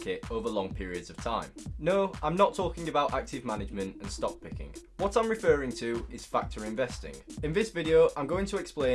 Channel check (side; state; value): both; identical; correlation 1.00